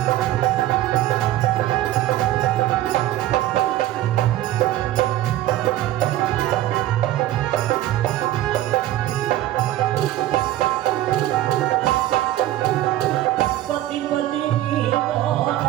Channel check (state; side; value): quieter; left; 14.2 dB